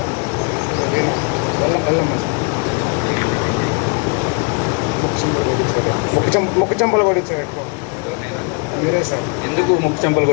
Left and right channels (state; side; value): quieter; right; 35.9 dB